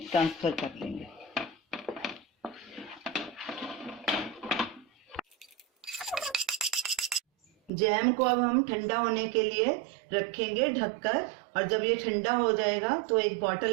ट्रांसफर कर लेंगे। जैम को अब हम ठंडा होने के लिए रखेंगे ढककर, और जब ये ठंडा हो जाएगा तो एक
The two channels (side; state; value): left; drops out; at 7.7 s